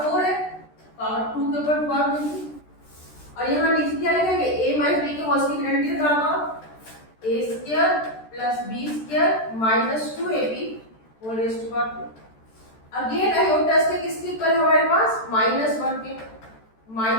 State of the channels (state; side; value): late; right; 13 ms